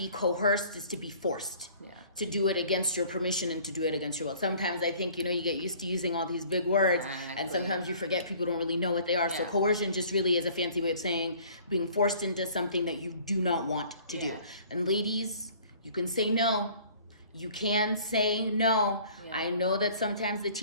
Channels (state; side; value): inverted; both; correlation -0.52